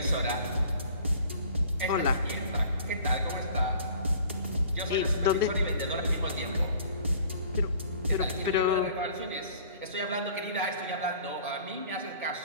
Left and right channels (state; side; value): inverted; both; correlation -0.50